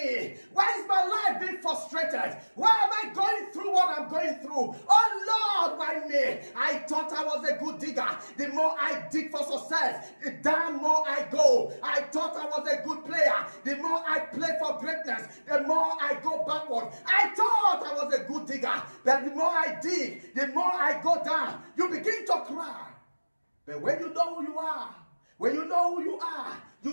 Why is my life being frustrated? Why am I going through what I'm going through? Oh Lord, why me? I thought I was a good digger. The more I dig for success, the damn more I go. I thought I was a good player. The more I play for greatness, the more I go backward. I thought I was a good digger. But the more I dig, the more I go down. You begin to cry. But when you know who you are, when you know who you are,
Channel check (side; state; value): both; inverted; correlation -1.00